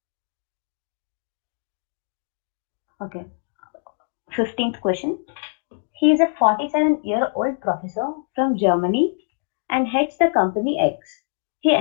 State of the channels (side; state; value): right; silent; digital silence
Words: Okay. 15th question. He is a 47-year-old professor from Germany and heads the company X. He